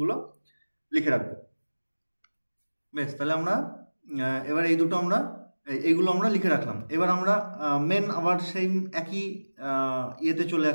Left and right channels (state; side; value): inverted; both; correlation -1.00